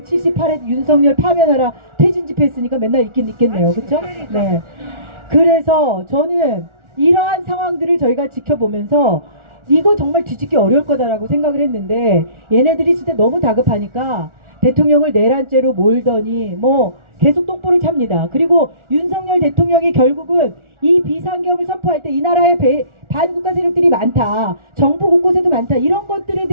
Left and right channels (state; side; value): late; left; 1.4 ms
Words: 윤석열 파면하라 퇴진 집회 했으니까 맨날 있겠네요. 그쵸? 네. 그래서 저는 이러한 상황들을 저희가 지켜보면서 이거 정말 뒤집기 어려울 거다라고 생각을 했는데 얘네들이 진짜 너무 다급하니까 대통령을 내란죄로 몰더니 계속 똥볼을 찹니다. 그리고 윤석열 대통령이 결국은 이 비상계엄을 선포할 때 이 나라에 반국가 세력들이 많다. 정부 곳곳에도 많다. 이런 것들에